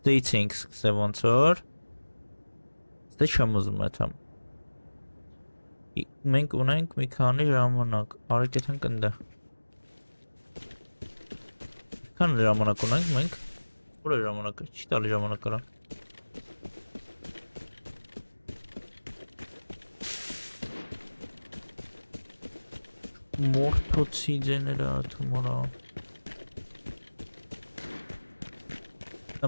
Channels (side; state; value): both; inverted; correlation -1.00